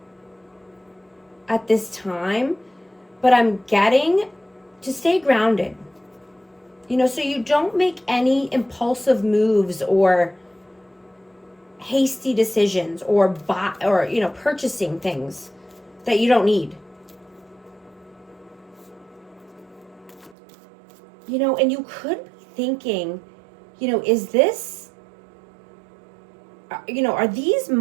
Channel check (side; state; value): left; drops out; at 20.4 s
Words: at this time, but I'm getting to stay grounded. You know, so you don't make any impulsive moves or hasty decisions or purchasing things that you don't need. You know, and you could be thinking, you know, is this, you know, are these